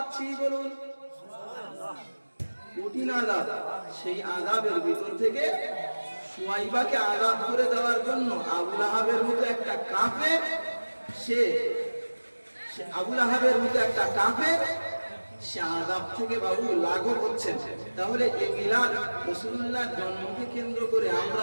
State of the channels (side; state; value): both; inverted; correlation -1.00